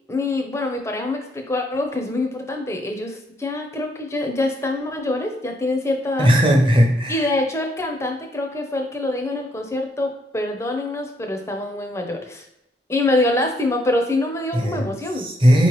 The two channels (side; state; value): both; normal; correlation 0.74